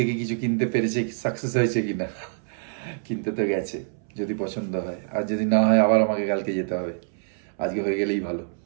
কিছু কিনতে পেরেছে, সাকসেস হয়েছে কিনা। কিনতে তো গেছে, যদি পছন্দ হয়। আর যদি না হয় আবার আমাকে কালকে যেতে হবে, আজকে হয়ে গেলেই ভালো।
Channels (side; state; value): left; silent; 61 dB below the other